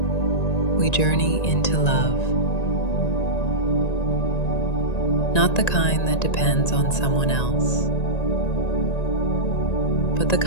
we journey into love. Not the kind that depends on someone else, but the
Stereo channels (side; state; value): right; late; 1.9 ms